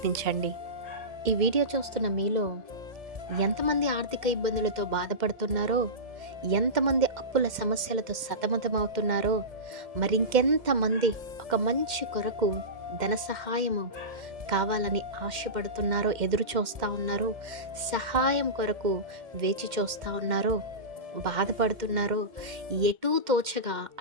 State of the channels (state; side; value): late; left; 2.1 ms